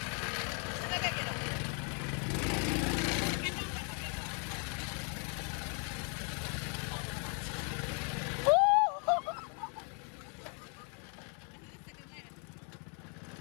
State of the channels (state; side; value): quieter; right; 39.0 dB